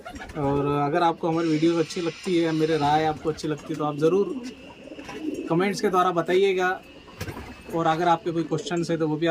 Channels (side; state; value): both; identical; correlation 1.00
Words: और अगर आपको हमारी वीडियोस अच्छी लगती है, मेरे राय आपको अच्छी लगती है, तो आप ज़रूर कमेंट्स के द्वारा बताइएगा। और अगर आपके कोई क्वेश्चन है तो वो भी